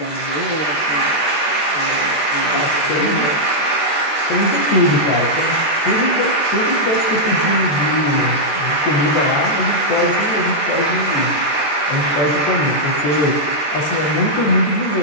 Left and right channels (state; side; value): late; right; 13 ms